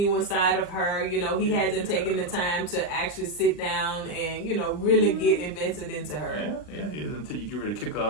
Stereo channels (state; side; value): late; right; 39 ms